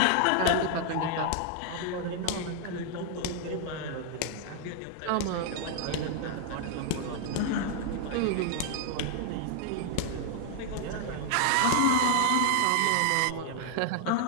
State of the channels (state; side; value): different; both; correlation 0.00